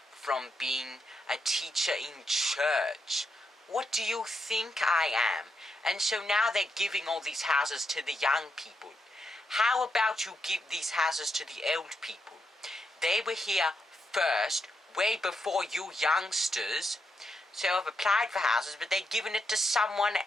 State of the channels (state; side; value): normal; both; correlation 0.82